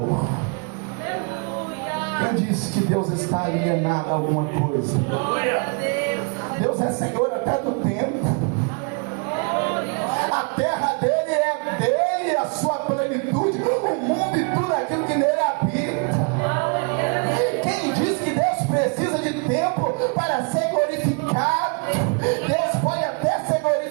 Quem disse que Deus está alienado a alguma coisa? Deus é Senhor até do tempo. A terra dele é dele, a sua plenitude, o mundo e tudo aquilo que nele habita. Quem diz que Deus precisa de tempo para ser glorificado? Deus pode até ser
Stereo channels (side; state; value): left; quieter; 36.4 dB